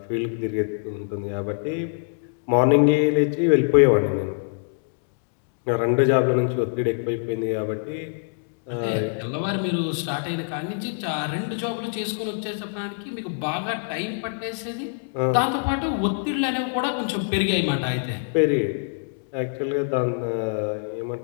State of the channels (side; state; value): right; silent; digital silence